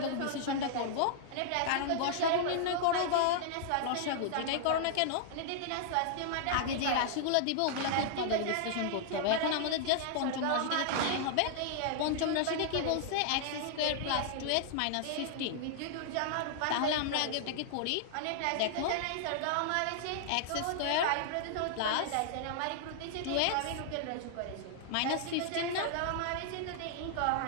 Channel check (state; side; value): different; both; correlation -0.01